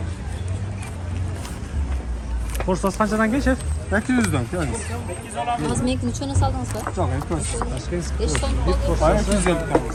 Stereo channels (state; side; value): identical; both; correlation 1.00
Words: Porsiyanız qanchadan keyin şef? 800'dan yani. Az menga nechani soldingiz ba? Çok etmez. Tashkent. 5 so'm qoldi. Bayağı 250 tane.